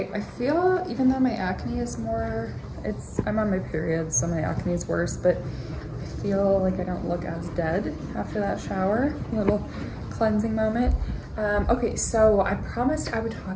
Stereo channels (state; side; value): identical; both; correlation 1.00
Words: I feel, even though my acne is more, I'm on my period, so my acne is worse, but I feel like I don't look as dead after that shower. A little cleansing moment. Okay, so I promised I would